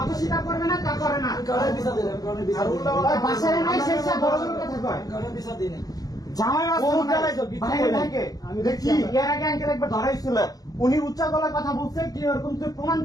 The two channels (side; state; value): right; late; 0.18 ms